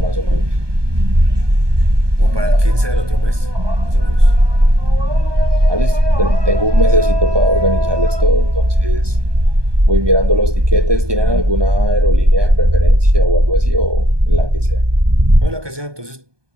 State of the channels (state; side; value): late; left; 1.2 ms